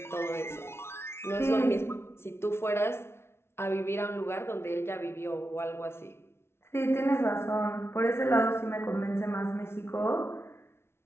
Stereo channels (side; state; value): right; late; 0.12 ms